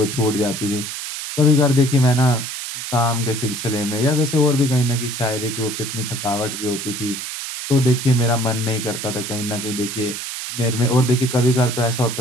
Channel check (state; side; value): noise; right; hiss, 6 dB below the sound